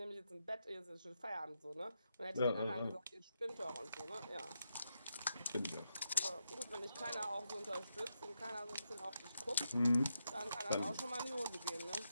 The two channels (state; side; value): inverted; both; correlation -0.84